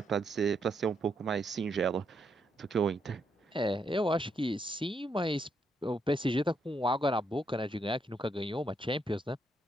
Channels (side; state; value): both; normal; correlation 0.77